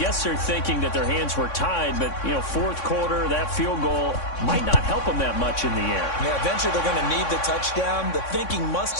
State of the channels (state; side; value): late; right; 3.6 ms